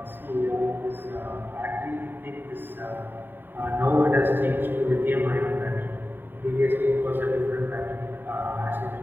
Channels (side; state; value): left; late; 0.094 ms